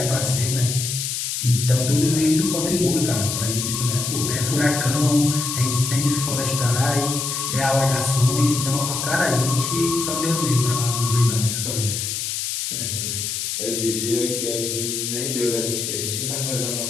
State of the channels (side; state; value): left; noise; hiss, 2 dB below the sound